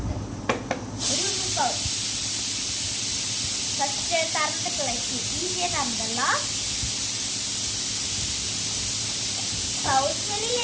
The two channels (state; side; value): identical; both; correlation 1.00